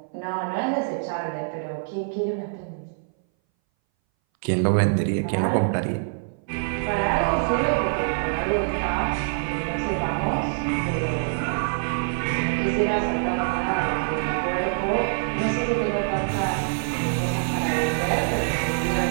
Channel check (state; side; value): silent; left; 60 dB below the other